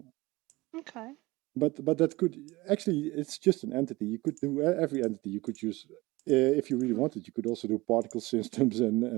Okay. But that could actually, it's just an entity. You could do every entity. You could use, if you really wanted, you could also do particle systems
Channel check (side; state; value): left; quieter; 21.1 dB